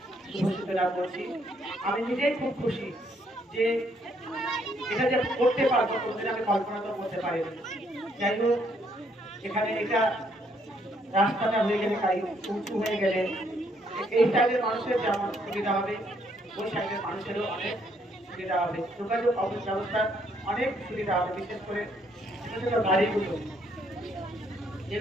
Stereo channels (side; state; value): both; normal; correlation 0.70